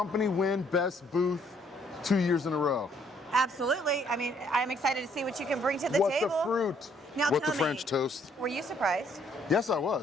win best booth 2 years in a row? Absolutely. I mean, I'm excited to see what you can bring to the What table. the fruit? Now What tell the me, French toast? Were you surprised? Yes, I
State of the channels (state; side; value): normal; both; correlation 0.66